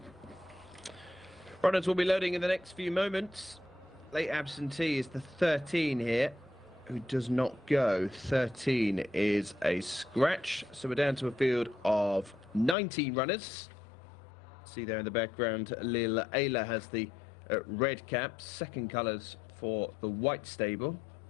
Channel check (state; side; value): drops out; right; at 12.8 s